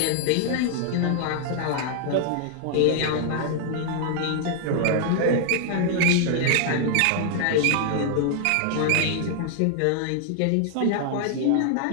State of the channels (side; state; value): both; different; correlation 0.00